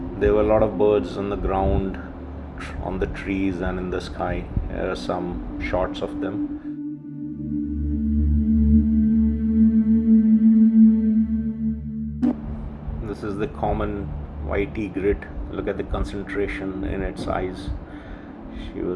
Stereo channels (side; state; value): both; identical; correlation 1.00